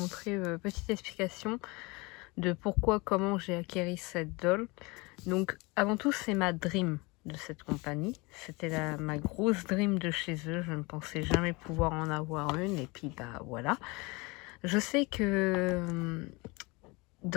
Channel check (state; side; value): quieter; right; 25.9 dB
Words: petite explication de pourquoi, comment j'ai acquéri cette doll. Donc avant tout, c'est ma dream de cette compagnie. C'était ma grosse dream de chez eux. Je ne pensais jamais pouvoir en avoir une, et puis bah voilà. Je sais que